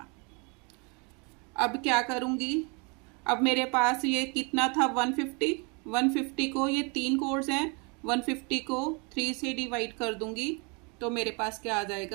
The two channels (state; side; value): quieter; left; 32.2 dB